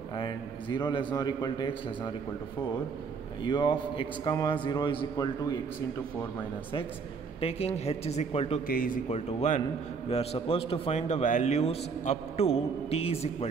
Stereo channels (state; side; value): quieter; left; 5.4 dB